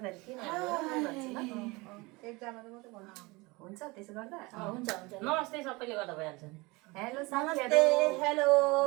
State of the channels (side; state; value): left; quieter; 24.2 dB